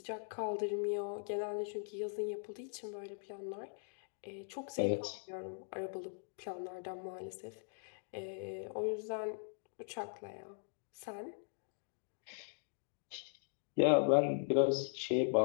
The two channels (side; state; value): right; silent; digital silence